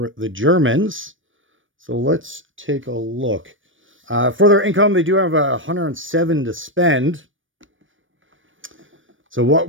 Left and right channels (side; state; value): left; late; 0.57 ms